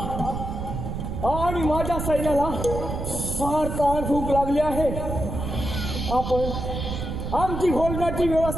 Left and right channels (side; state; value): right; noise; rumble, 4 dB below the sound